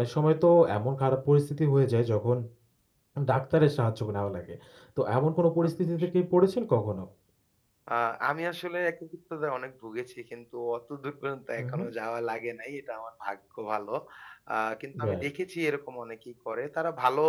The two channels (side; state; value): both; identical; correlation 1.00